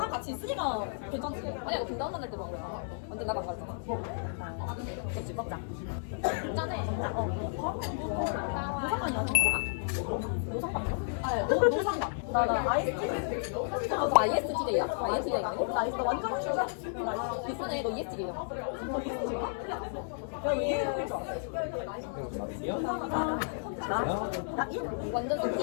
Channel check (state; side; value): silent; right; 56 dB below the other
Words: 같이 있으니까 괜찮지. 아니야, 너 분당 만날 때만 그래. 완전 나도 안 가잖아. 그렇지, 먹자. 짠해. 노상관이야. 노상관이야? 아, 노상관. 나 ISTJ. 너 ISTJ야? ISTJ가 아니고? 나 완전 휴자. 비슷하네, 너 ESTJ야. 너 ISTJ야? 야, 얘 나 1? 완전